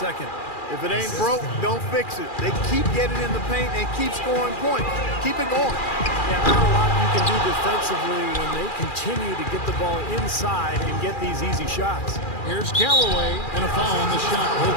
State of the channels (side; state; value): right; late; 2.4 ms